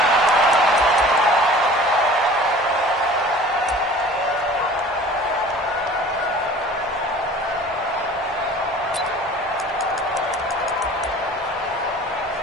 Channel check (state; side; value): normal; both; correlation 0.45